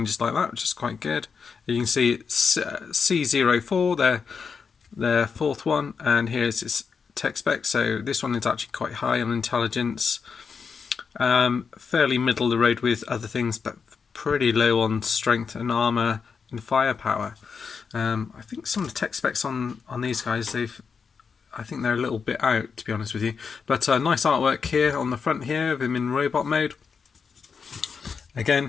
like that, which is quite good. You can see it's C04, their fourth one, and here's its tech spec. So this one is actually quite high on intelligence, fairly middle of the road with other things, but pretty low on strength and armor and firepower. I think some of the tech specs on these guys, I think they're a little bit out, to be honest with you. But nice artwork here on the front here of him in robot mode.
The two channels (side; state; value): right; quieter; 5.8 dB